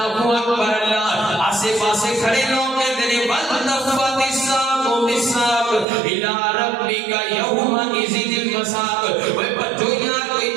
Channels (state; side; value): drops out; left; at 5.9 s